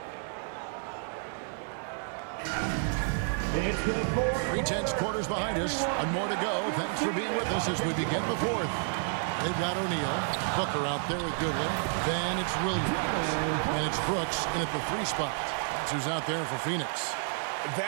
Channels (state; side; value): silent; left; 58 dB below the other